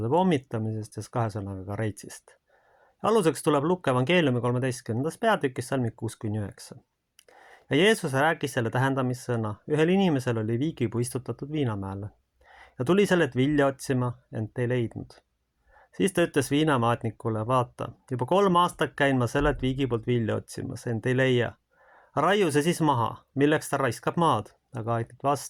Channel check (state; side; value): identical; both; correlation 1.00